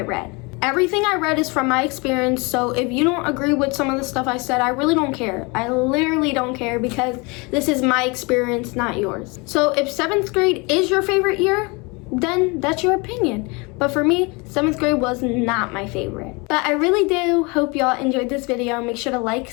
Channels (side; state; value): right; quieter; 28.2 dB